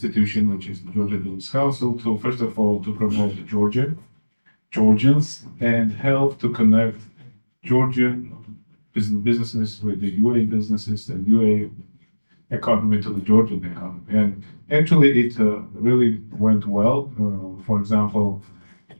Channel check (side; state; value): both; inverted; correlation -1.00